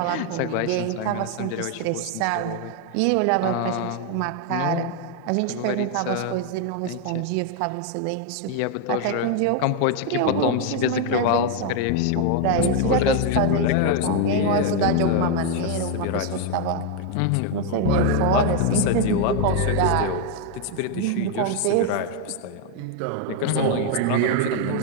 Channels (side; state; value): both; different; correlation 0.01